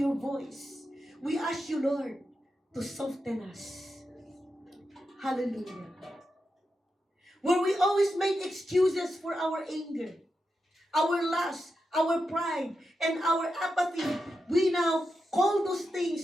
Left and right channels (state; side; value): normal; both; correlation 0.88